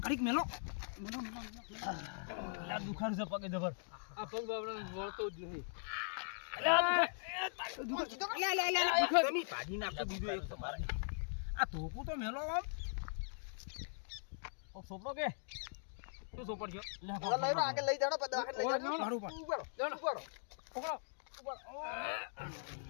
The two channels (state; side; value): silent; right; digital silence